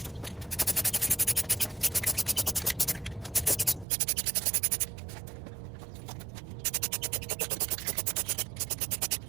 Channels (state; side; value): drops out; left; at 3.9 s